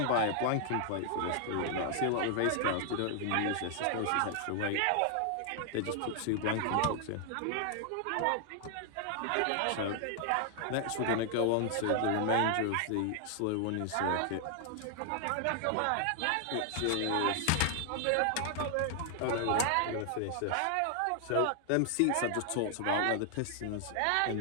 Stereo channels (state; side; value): different; both; correlation 0.00